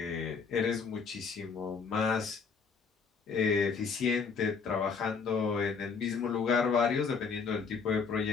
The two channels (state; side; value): quieter; right; 5.4 dB